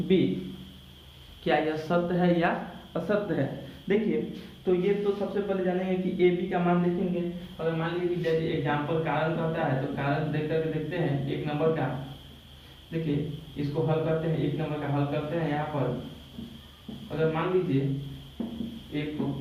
B. क्या यह सत्य है या असत्य है। देखिए तो ये तो सबसे पहले जानेंगे कि ए बी का मान देखेंगे। अगर मान लीजिए कि जैसे एग्जाम्पल कारण कहता है तो कारण देख करके देखते हैं 1 नंबर का। देखिए इसको हल करते हैं, 1 नंबर का हल करते हैं। यहाँ पर अगर मान लीजिए एक को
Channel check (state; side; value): identical; both; correlation 1.00